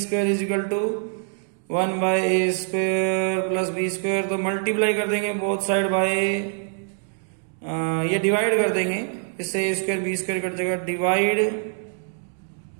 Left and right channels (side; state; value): left; silent; 62 dB below the other